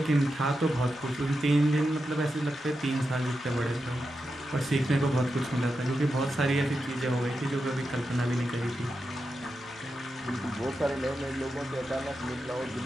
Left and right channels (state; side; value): normal; both; correlation 0.88